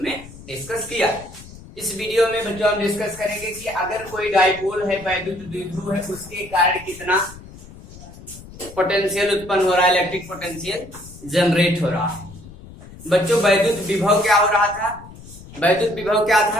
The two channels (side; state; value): left; noise; rumble, 18 dB below the sound